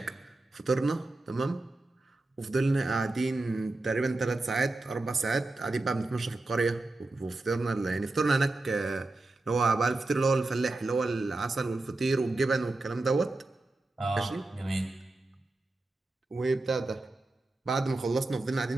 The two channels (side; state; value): left; quieter; 3.1 dB